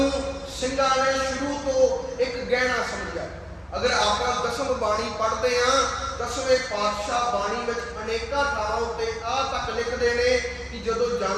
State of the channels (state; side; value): identical; both; correlation 1.00